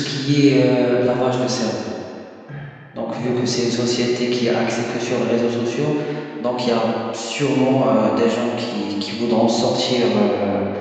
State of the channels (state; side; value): identical; both; correlation 1.00